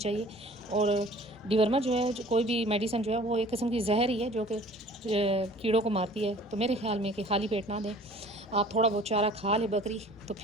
और डिवर्मर जो है कोई भी मेडिसिन जो है वो एक किस्म की जहर ही है जो कि कीड़ों को मारती है। तो मेरे ख्याल में कि खाली पेट ना दें, आप थोड़ा बहुत चारा खा ले बकरी तो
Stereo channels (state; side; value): normal; both; correlation 0.48